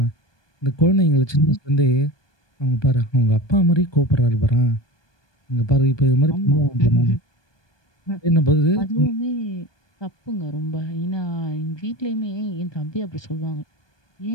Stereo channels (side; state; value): right; late; 1.2 ms